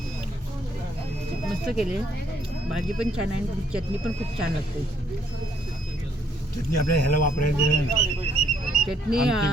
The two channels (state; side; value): normal; both; correlation 0.68